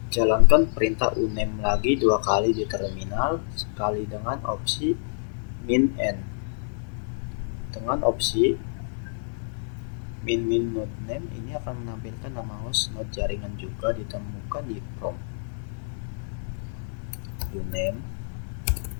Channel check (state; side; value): silent; right; 60 dB below the other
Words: Jalankan perintah uname lagi 2 kali di terminal, sekali dengan opsi -n. Dengan opsi min node name ini akan menampilkan nama host node jaringan juga ditemukan di prompt. Uname